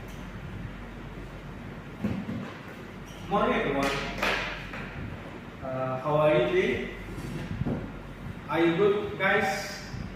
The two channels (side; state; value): both; identical; correlation 1.00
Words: Morning everyone. How are you today? Are you good, guys?